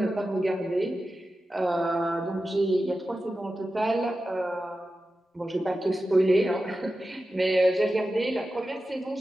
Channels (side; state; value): both; normal; correlation 0.93